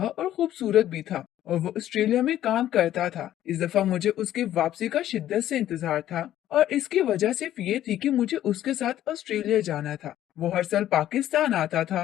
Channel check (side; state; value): right; quieter; 12.4 dB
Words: और खूबसूरत भी था, और वो ऑस्ट्रेलिया में काम करता था। इस दफा मुझे उसकी वापसी का शिद्दत से इंतजार था, और इसकी वजह सिर्फ ये थी कि मुझे उसके साथ ऑस्ट्रेलिया जाना था। वो हर साल पाकिस्तान आता